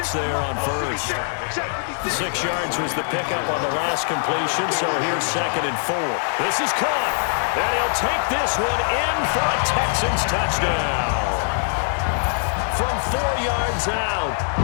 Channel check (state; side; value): silent; right; digital silence